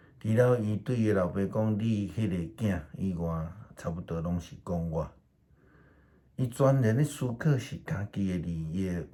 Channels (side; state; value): both; identical; correlation 1.00